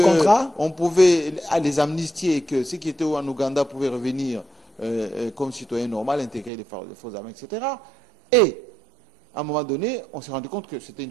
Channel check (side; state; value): left; drops out; at 6.5 s